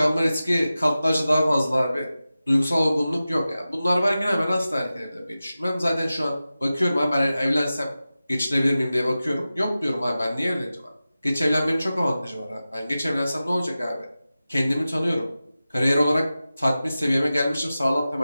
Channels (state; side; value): inverted; both; correlation -0.94